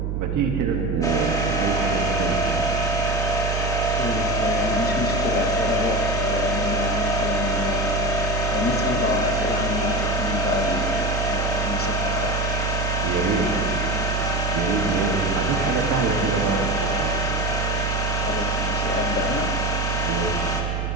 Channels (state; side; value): noise; right; hum, 1 dB below the sound